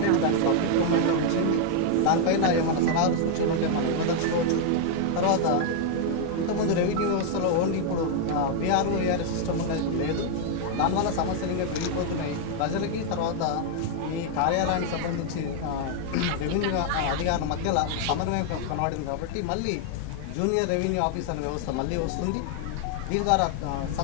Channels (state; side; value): different; both; correlation 0.00